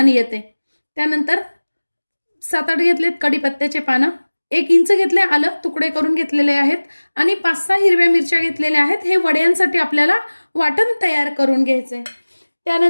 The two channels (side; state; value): both; inverted; correlation -1.00